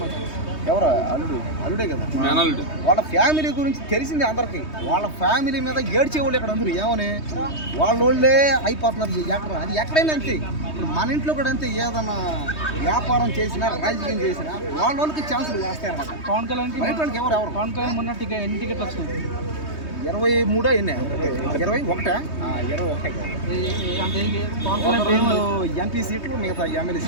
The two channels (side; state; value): right; late; 3.2 ms